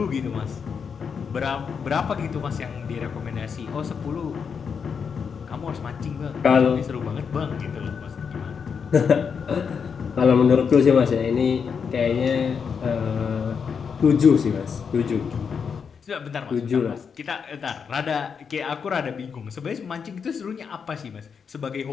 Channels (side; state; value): right; quieter; 6.4 dB